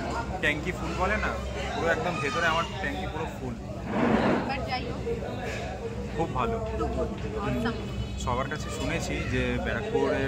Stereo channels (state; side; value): identical; both; correlation 1.00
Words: ট্যাঙ্কি ফুল বলে না, পুরো একদম ভেতরে আমার ট্যাঙ্কি পুরো ফুল। খুব ভালো। সবার কাছে শুনেছি যে